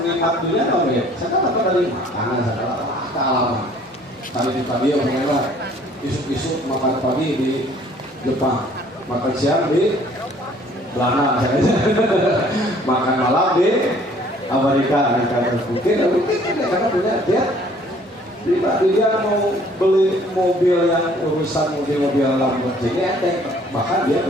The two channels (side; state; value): both; normal; correlation 0.57